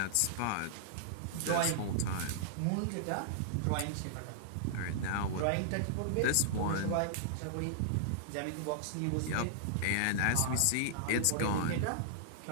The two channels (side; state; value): both; different; correlation -0.01